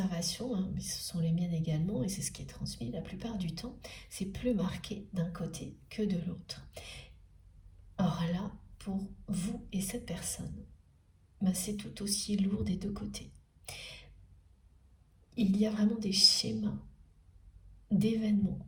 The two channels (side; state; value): both; identical; correlation 1.00